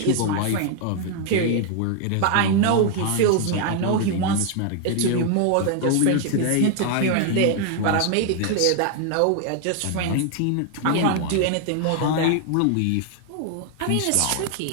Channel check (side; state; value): both; different; correlation 0.00